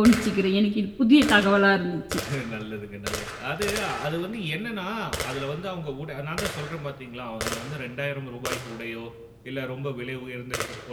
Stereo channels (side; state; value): both; identical; correlation 1.00